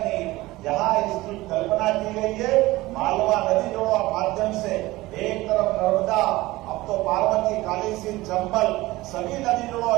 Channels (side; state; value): left; quieter; 19.0 dB